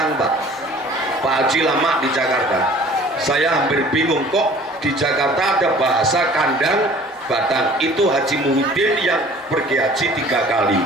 Pak. Pak Haji lama di Jakarta, saya hampir bingung kok di Jakarta ada bahasa kandang batang. Itu Haji Muhyiddin yang pergi haji 3 kali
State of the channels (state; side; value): normal; both; correlation 0.49